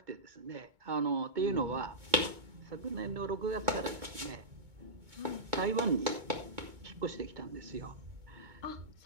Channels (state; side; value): late; left; 2.2 ms